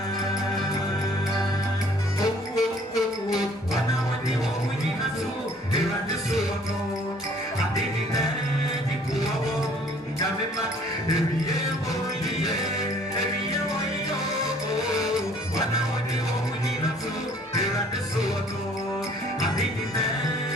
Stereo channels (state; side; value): normal; both; correlation 0.57